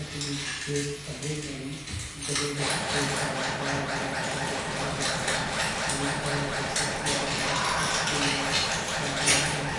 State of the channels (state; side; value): identical; both; correlation 1.00